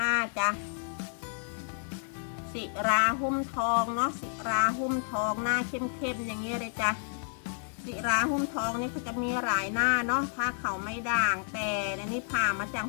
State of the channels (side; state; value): right; silent; digital silence